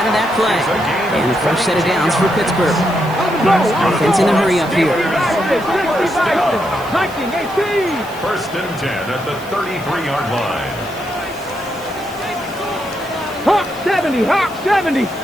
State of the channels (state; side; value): noise; right; hiss, 20 dB below the sound